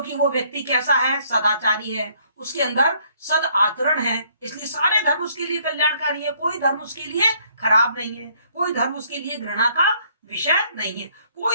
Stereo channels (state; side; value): inverted; both; correlation -0.64